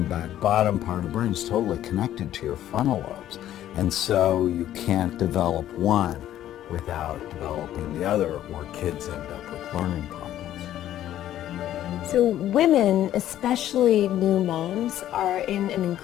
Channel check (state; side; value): quieter; right; 12.3 dB